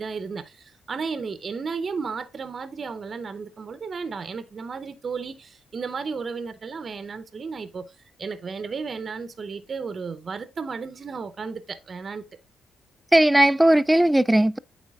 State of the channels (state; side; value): normal; both; correlation 0.97